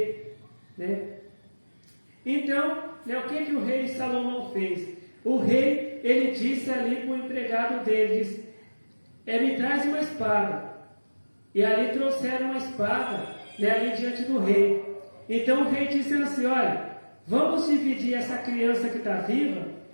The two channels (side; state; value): both; inverted; correlation -1.00